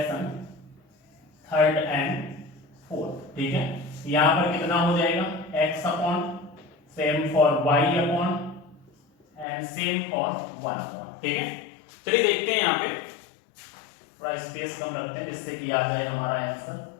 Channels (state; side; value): drops out; right; at 9.5 s